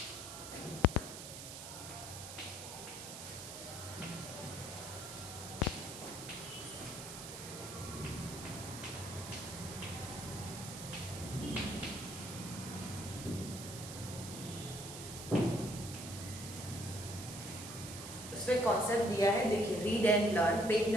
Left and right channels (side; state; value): right; noise; hiss, 10 dB below the sound